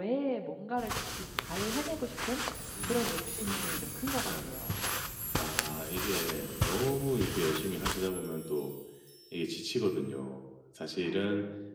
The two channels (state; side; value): identical; both; correlation 1.00